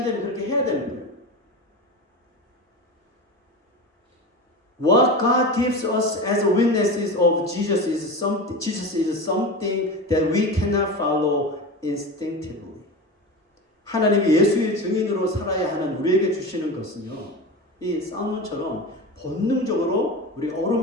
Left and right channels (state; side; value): normal; both; correlation 0.27